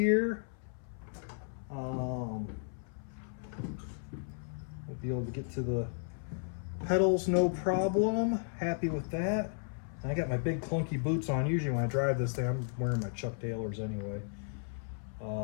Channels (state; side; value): silent; right; 55 dB below the other